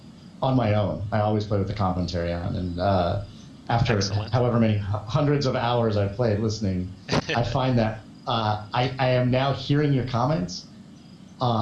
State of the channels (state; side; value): identical; both; correlation 1.00